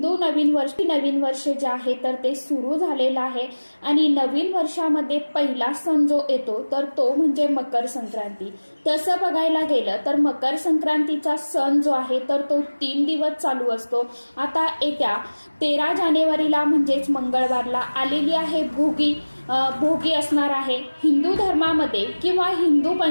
नवीन वर्ष जे आहे तर ते सुरू झालेलं आहे आणि नवीन वर्षामध्ये पहिला सण जो येतो तर तो म्हणजे मकर संक्रांती. तसं बघायला गेलं तर मकर संक्रांतीचा सण जो आहे तर तो 3 दिवस चालू असतो. आता येत्या 13 जानेवारीला म्हणजेच मंगळवारला आलेली आहे भोगी असणार आहे. हिंदू धर्मामध्ये किंवा हिंदू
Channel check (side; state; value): both; inverted; correlation -1.00